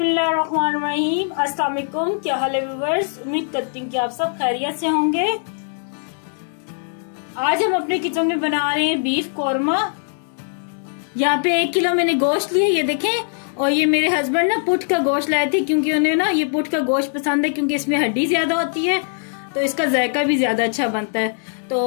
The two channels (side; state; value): right; silent; digital silence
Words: अस्सलाम वालेकुम। क्या हाल है व्यूअर्स? उम्मीद करती हूँ कि आप सब खैरियत से होंगे। आज हम अपने किचन में बना रहे हैं बीफ कौरमा। यहाँ पे 1 किलो मैंने गोश्त लिया, ये देखें। और ये मेरे हस्बैंड ना पुट का गोश्त लाए थे क्योंकि उन्हें ना ये पुट का गोश्त पसंद है क्योंकि इसमें हड्डी ज्यादा होती है तो इसका जायका भी ज्यादा अच्छा बनता है।